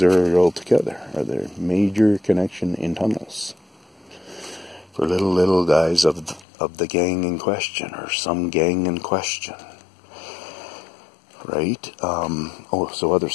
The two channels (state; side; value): drops out; right; at 6.5 s